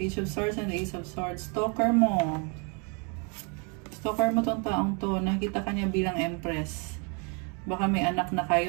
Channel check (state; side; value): quieter; left; 34.8 dB